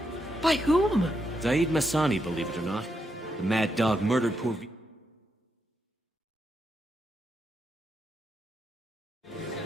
By whom? Zaid Masani, believe it or not. The mad dog murdered poor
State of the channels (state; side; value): normal; both; correlation 0.82